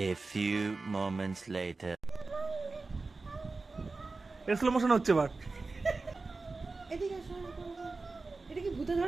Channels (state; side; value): quieter; left; 3.7 dB